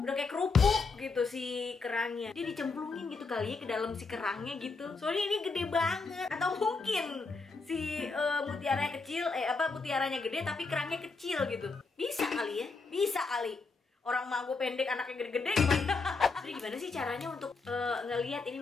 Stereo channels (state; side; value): quieter; right; 4.2 dB